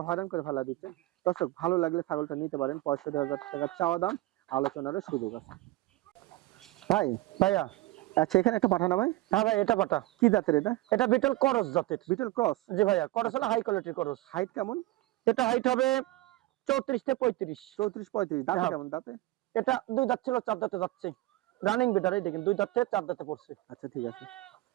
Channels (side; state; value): left; quieter; 18.2 dB